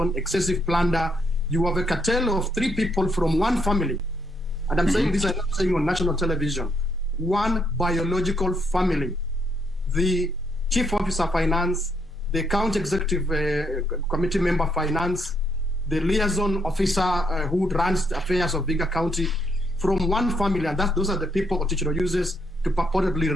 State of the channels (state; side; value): normal; both; correlation 0.74